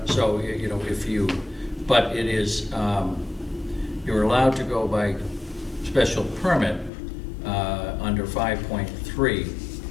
So, you know, but it is, you're allowed to go by special permit under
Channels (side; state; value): right; drops out; at 6.9 s